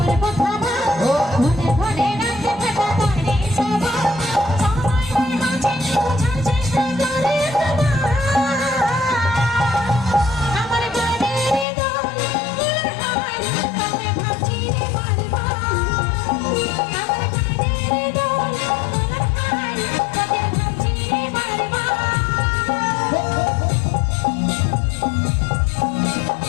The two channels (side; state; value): right; drops out; at 11.7 s